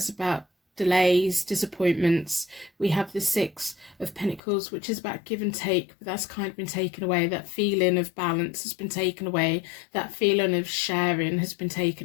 about delays, disappointments. We have the 6 of Pentacles, which is about give and take, but that's kind of been taken away. That feeling of balance has been taken away. That feeling of sharing has been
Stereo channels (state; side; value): drops out; right; at 4.4 s